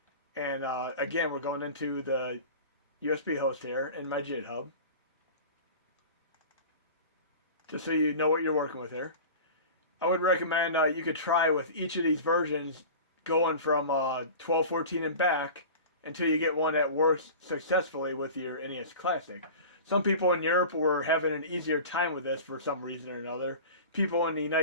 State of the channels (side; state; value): both; inverted; correlation -0.36